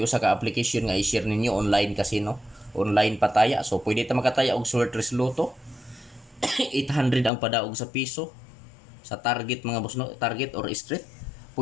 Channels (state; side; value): drops out; right; at 7.3 s